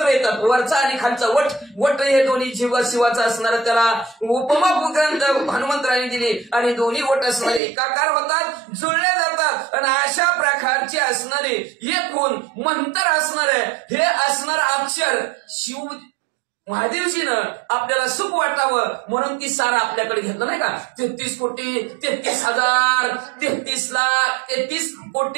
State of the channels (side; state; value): left; drops out; at 7.6 s